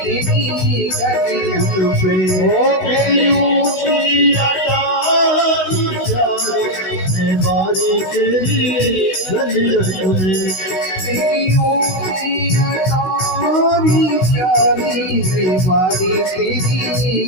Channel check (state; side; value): late; right; 16 ms